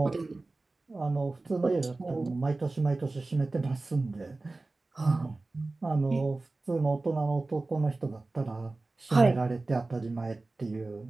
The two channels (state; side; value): quieter; left; 3.3 dB